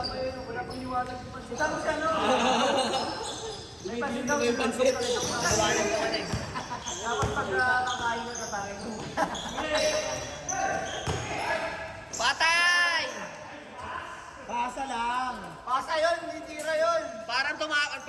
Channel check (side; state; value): both; identical; correlation 1.00